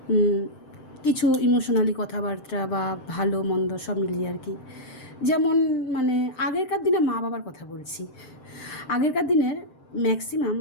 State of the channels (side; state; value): right; late; 7.7 ms